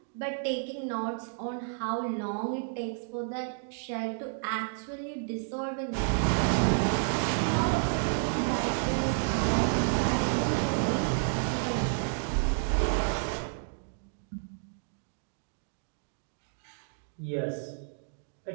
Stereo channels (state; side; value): silent; left; digital silence